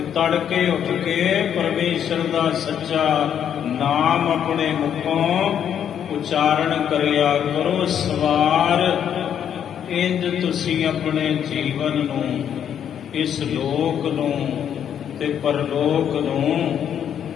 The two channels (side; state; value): right; quieter; 9.0 dB